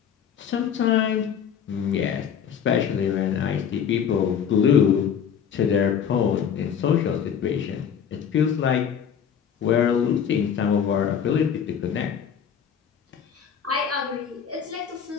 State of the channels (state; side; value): quieter; right; 8.0 dB